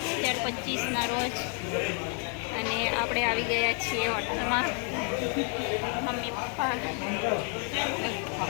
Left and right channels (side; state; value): right; quieter; 39.5 dB